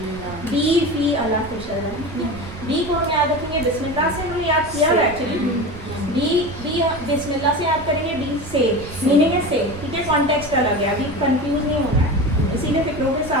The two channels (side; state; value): right; noise; rumble, 13 dB below the sound